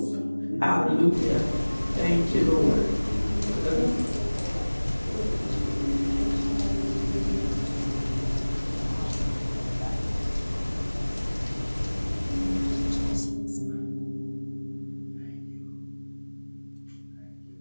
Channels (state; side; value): inverted; both; correlation -1.00